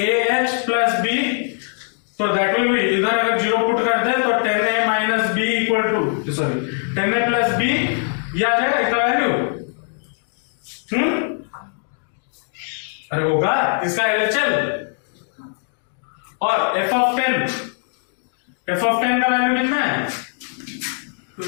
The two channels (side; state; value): right; silent; 56 dB below the other